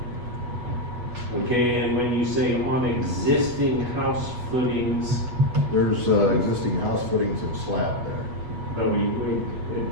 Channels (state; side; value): late; left; 8.2 ms